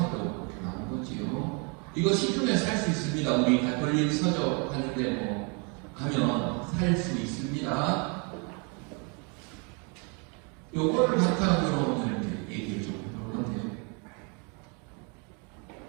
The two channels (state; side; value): quieter; left; 34.3 dB